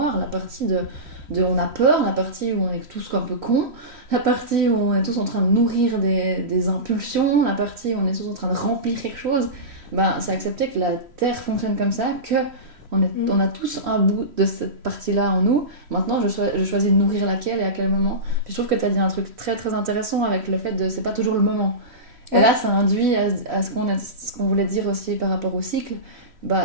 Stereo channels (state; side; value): late; left; 3.1 ms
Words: la partie de on a peur, la partie où on est tous un peu cons, la partie où on est tous en train de nourrir des impulsions, la partie où on est tous en train de remplir quelque chose. C'est accepter que la Terre fonctionne comme ça, on a tous un bout de cette partie-là en nous. Maintenant, je choisis de nourrir laquelle et à quel moment. Puis je trouve que tu as dit un truc très très intéressant avec le fait de c'est pas toujours le moment. Et là, ça induit à ce qu'on voulait dire aussi par rapport au cycle.